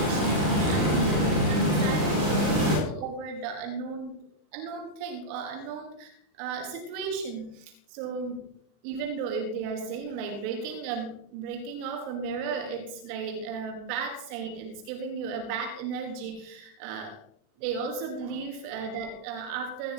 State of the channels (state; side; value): late; left; 40 ms